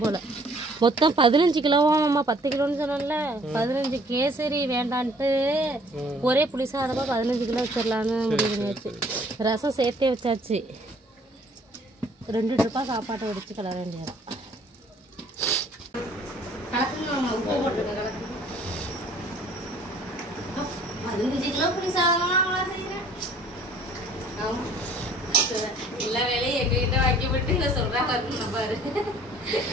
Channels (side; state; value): both; normal; correlation 0.57